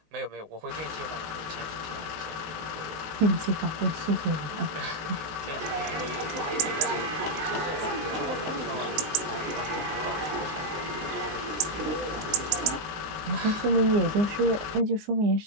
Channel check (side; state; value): left; late; 19 ms